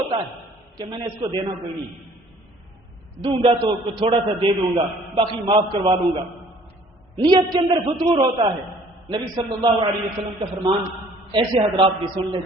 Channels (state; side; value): normal; both; correlation 0.55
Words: ہے کہ میں نے اس کو دینا کوئی نہیں, دوں گا تو تھوڑا سا دے دوں گا, باقی معاف کروا لوں گا. نیت کے اندر فتور ہوتا ہے. نبی صلی اللہ علیہ وسلم کا فرمان ایسے حضرات بھی سن لیں